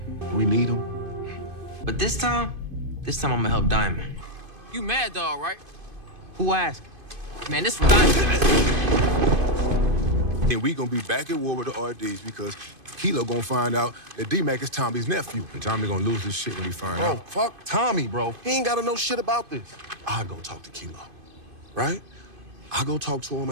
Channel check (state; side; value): late; left; 2.5 ms